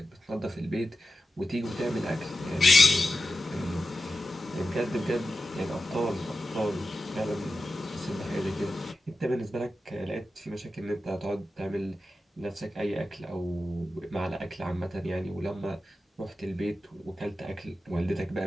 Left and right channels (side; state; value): both; normal; correlation 0.92